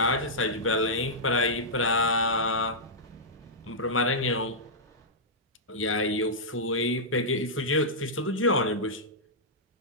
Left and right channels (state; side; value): normal; both; correlation -0.11